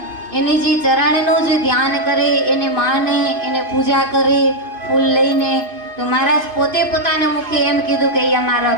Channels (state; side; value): late; left; 2.5 ms